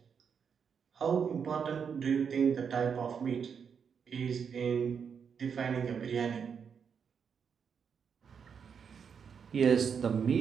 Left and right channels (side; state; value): left; quieter; 6.8 dB